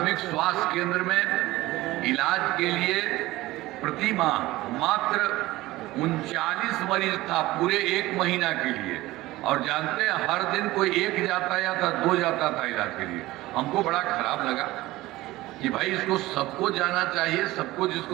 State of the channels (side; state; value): left; quieter; 18.1 dB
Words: स्वास्थ्य केंद्र में इलाज के लिए प्रति माह मात्र 39 मरीज था पूरे 1 महीना के लिए, और जानते हैं हर दिन कोई 1 जाता या था 2 जाता था इलाज के लिए। हमको बड़ा खराब लगा कि भाई इसको सबको जाना चाहिए, सबको